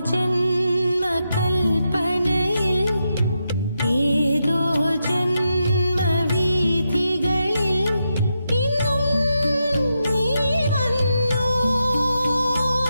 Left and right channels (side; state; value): both; inverted; correlation -0.85